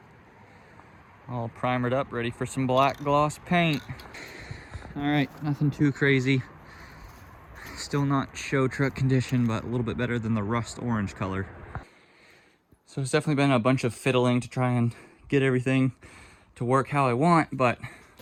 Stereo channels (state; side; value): identical; both; correlation 1.00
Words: All primered up, ready for some black gloss paint. All right, nothing too crazy. Still not show truck condition, but a little bit better than the rust orange color. So it's definitely been a bunch of fiddling to try and get everything to work how I want, but